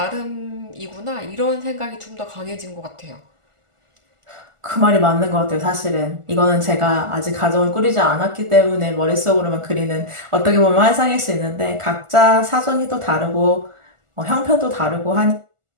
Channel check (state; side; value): late; left; 1.4 ms